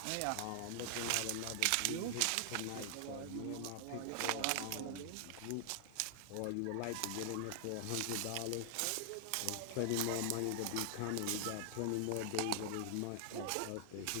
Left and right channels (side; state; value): both; different; correlation 0.00